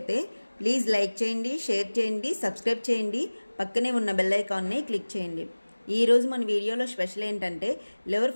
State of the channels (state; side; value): inverted; both; correlation -1.00